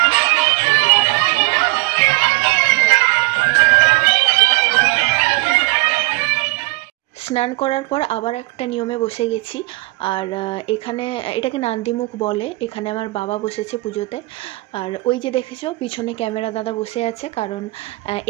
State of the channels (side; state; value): left; quieter; 23.3 dB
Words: স্নান করার পর আবার একটা নিয়মে বসে গেছি। আর এখানে এটাকে নান্দিমুখ বলে। এখানে আমার বাবা বসেছে পুজোতে। আর ওই যে দেখেছো পিছনে ক্যামেরা দাদা বসে আছে, কারণ